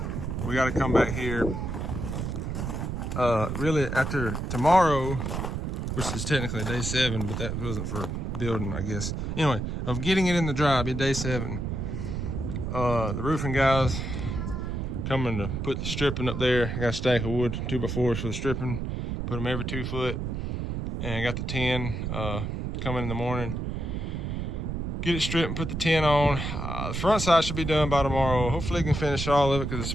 we got to come back here really after tomorrow, which is technically day 7, but that wasn't for building, I guess. Anyway, of getting it in the dry, be day 7. The roofing guys coming to put the stripping up there. I got a stack of wood, 2x4s for the stripping. Put them every 2 foot. And I got the tin coming in the morning. Get it stripped and put the tin on. The front side should be done by tomorrow. Hopefully, I can finish all of it because it's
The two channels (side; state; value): right; noise; rumble, 3 dB below the sound